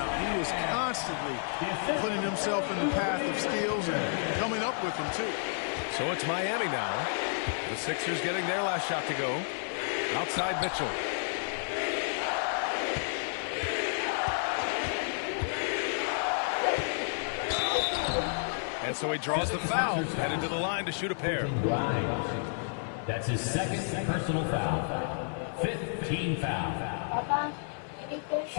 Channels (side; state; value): right; silent; 57 dB below the other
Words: He was constantly putting himself in the path of steals and coming up with them, too. So it's Miami now. The Sixers getting their last shot to go. Outside Mitchell. And so he draws the foul, headed to the line to shoot a pair. That's his second personal foul. 15 foul.